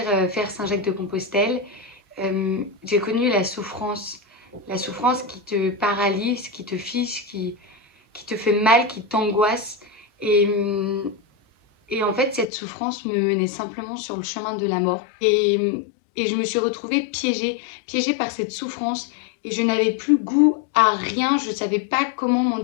faire Saint-Jacques-de-Compostelle, j'ai connu la souffrance qui te paralyse, qui te fige, qui te fait mal, qui t'angoisse. Et en fait cette souffrance me menait simplement sur le chemin de la mort. Et je me suis retrouvée piégée par cette souffrance. Et je n'avais plus goût à rien, je ne savais pas comment m'en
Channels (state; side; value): drops out; right; at 12.5 s